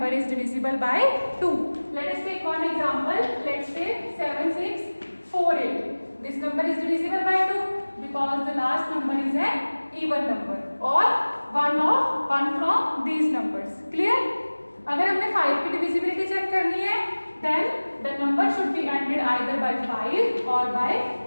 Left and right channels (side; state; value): both; inverted; correlation -1.00